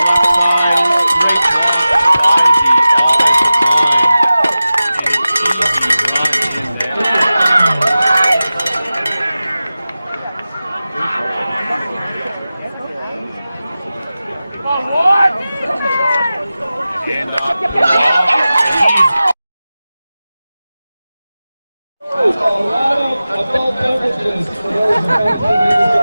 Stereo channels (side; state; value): both; inverted; correlation -0.95